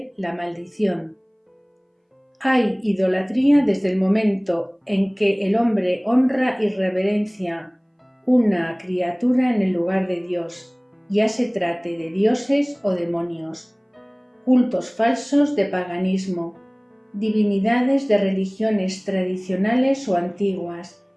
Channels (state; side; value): identical; both; correlation 1.00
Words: la maldición. Hay idolatría desde el momento en que el hombre honra y reverencia una criatura en el lugar de Dios, ya se trate de dioses o demonios, cultos falsos de paganismo, divinidades de religiones tradicionales o antiguas,